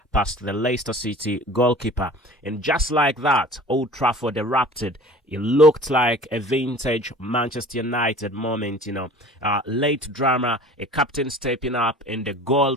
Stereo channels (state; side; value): normal; both; correlation 0.43